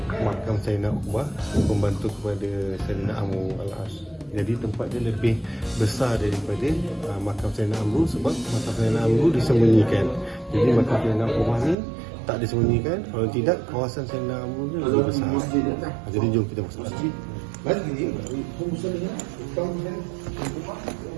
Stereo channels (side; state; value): left; drops out; at 11.8 s